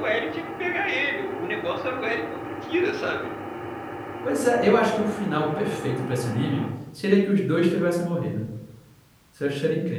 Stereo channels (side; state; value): both; identical; correlation 1.00